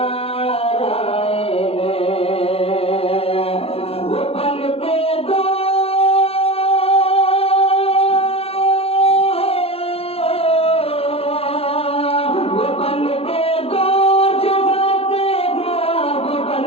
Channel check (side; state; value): right; late; 0.28 ms